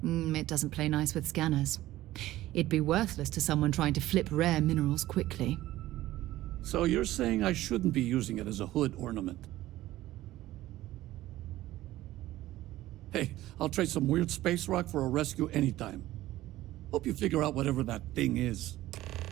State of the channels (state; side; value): quieter; left; 15.7 dB